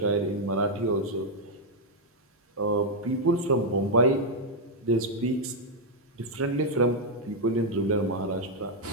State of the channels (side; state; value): both; normal; correlation -0.01